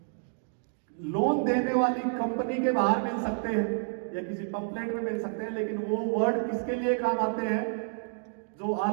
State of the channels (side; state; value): left; silent; digital silence